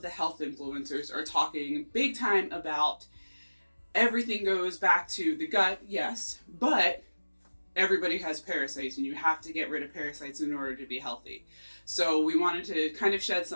the health influencers are talking big time about everything goes back to the gut, yes, but everybody has parasites and you have to get rid of parasites in order to be healthy. So we wanted to kind of shed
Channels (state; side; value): inverted; both; correlation -1.00